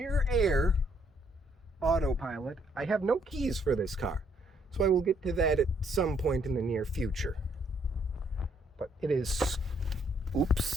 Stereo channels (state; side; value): normal; both; correlation 0.69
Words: air autopilot. I have no keys for this car, so I will get to that at some point in the near future. But it is...